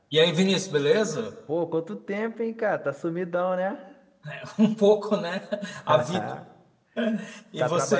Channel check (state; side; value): identical; both; correlation 1.00